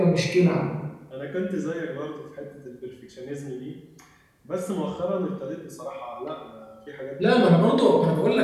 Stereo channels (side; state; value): both; identical; correlation 1.00